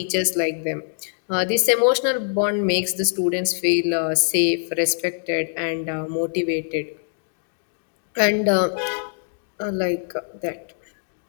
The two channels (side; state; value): right; silent; 63 dB below the other